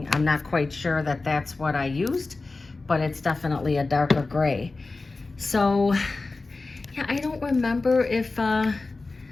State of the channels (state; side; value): quieter; right; 3.5 dB